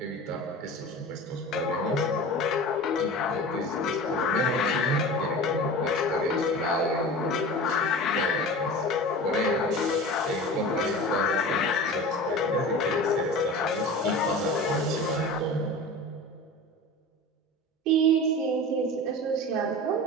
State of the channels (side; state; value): both; normal; correlation 0.34